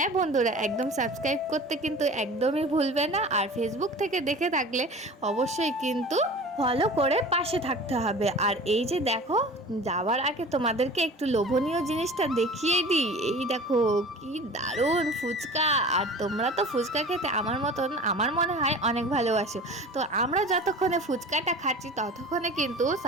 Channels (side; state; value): both; normal; correlation 0.39